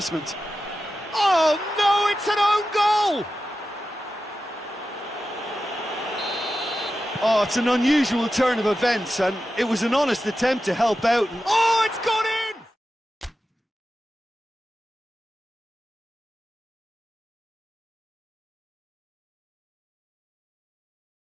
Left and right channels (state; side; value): normal; both; correlation 0.92